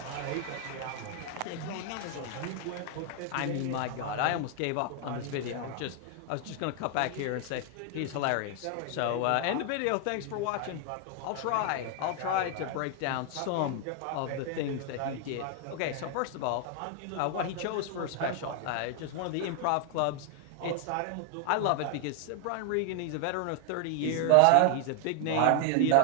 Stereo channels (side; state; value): both; different; correlation 0.00